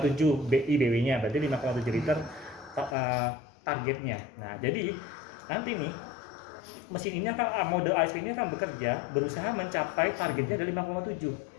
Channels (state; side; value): drops out; right; at 3.0 s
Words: BW-nya berarti 5,7 liter targetnya. Nah, jadi nanti nih mesin ini akan mode ASV ini akan berusaha mencapai targetnya dari